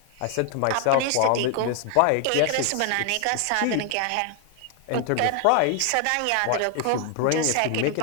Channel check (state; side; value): different; both; correlation 0.00